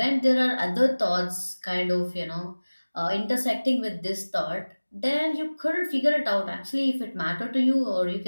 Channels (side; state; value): both; inverted; correlation -1.00